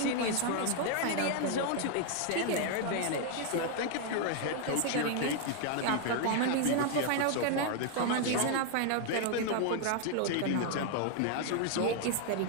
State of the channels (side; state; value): both; different; correlation 0.00